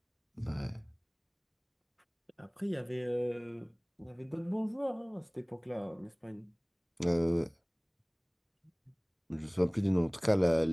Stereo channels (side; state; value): both; identical; correlation 1.00